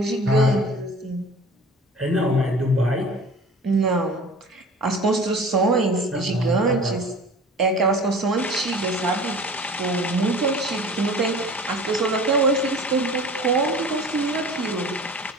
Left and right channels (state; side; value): normal; both; correlation 0.41